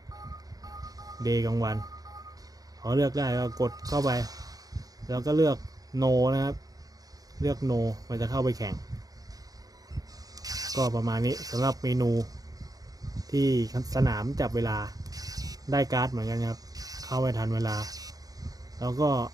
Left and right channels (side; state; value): left; late; 0.18 ms